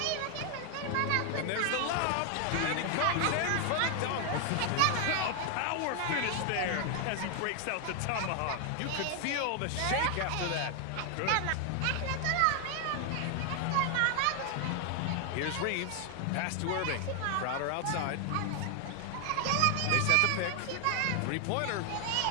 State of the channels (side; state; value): both; different; correlation 0.00